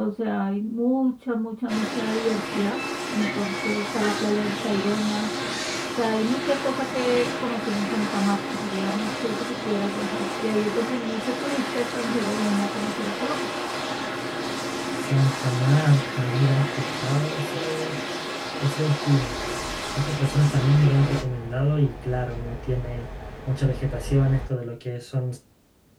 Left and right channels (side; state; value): both; identical; correlation 1.00